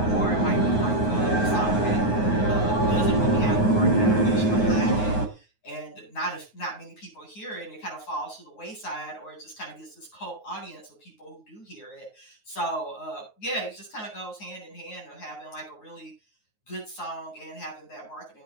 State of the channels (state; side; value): late; right; 9.4 ms